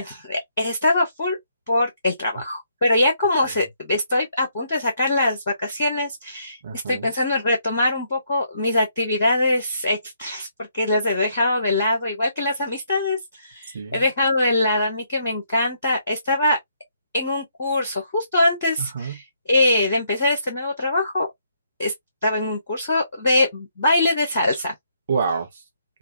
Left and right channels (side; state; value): both; inverted; correlation -0.72